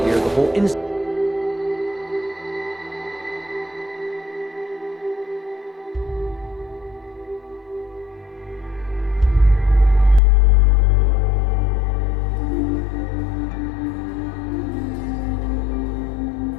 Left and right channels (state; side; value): drops out; right; at 10.2 s